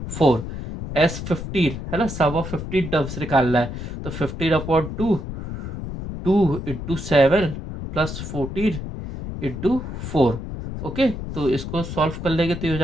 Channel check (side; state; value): left; noise; rumble, 7 dB below the sound